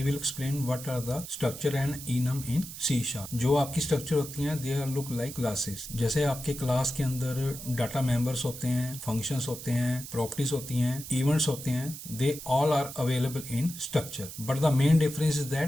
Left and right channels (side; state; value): right; noise; hiss, 11 dB below the sound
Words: will explain what are the structure and enum in C#. जो आपकी स्ट्रक्चर होती हैं, they are look like classes. जैसे आपके क्लास के अंदर डाटा मेंबर्स होते हैं, फंक्शंस होते हैं, प्रॉपर्टीज होती हैं, इवेंट्स होते हैं, they all are available in structure. But the main difference is